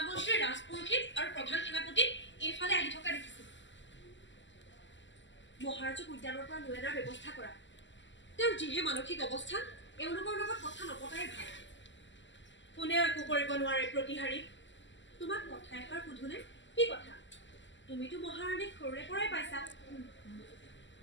ৰাজপুৰোহিত আৰু প্ৰধান সেনাপতি এইফালে আহি থকা দেখিছিল মহাৰাজক উদ্যানৰ পৰা লৈ অনাৰ ব্যৱস্থা কৰা তেওঁৰ যিহে মানসিক অৱস্থা এওঁলোকৰ লগত কথা নপতাই ভাল কোনেও একো কৰিব নোৱাৰে প্ৰতিহাৰী তোমাক কথা এষাৰ সুধোনে কি কথা তুমিতো মহাৰাণীক সৰুৰে পৰাই পাইছা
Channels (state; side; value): late; right; 0.54 ms